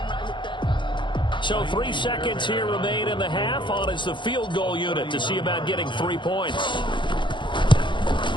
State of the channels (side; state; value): right; late; 0.23 ms